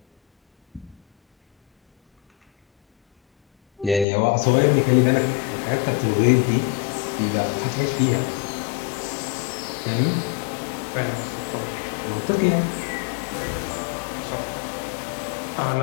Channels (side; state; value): right; drops out; at 4.0 s